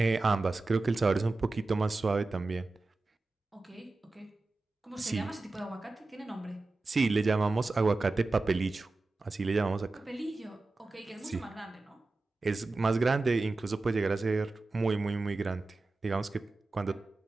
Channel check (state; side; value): quieter; left; 3.3 dB